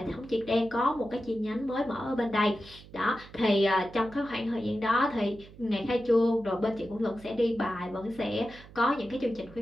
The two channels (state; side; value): noise; right; hum, 20 dB below the sound